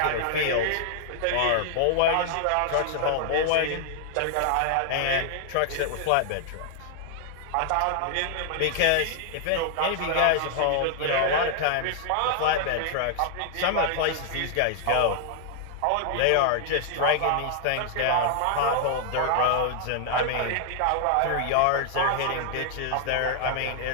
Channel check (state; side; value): different; both; correlation 0.00